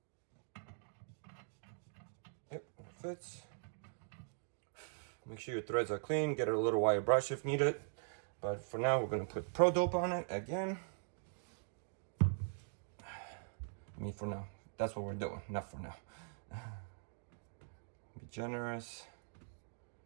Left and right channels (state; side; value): silent; left; digital silence